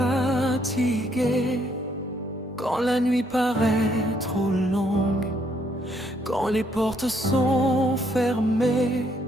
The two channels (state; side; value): normal; both; correlation 0.70